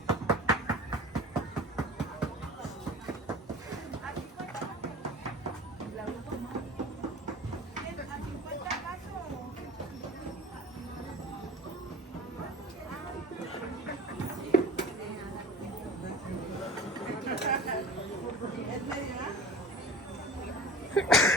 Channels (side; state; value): both; normal; correlation 0.37